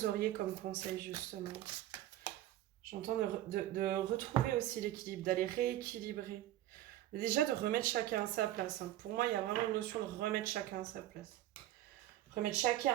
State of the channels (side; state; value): left; quieter; 13.9 dB